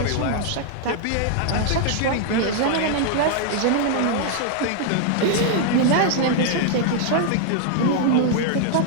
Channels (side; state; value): both; different; correlation -0.01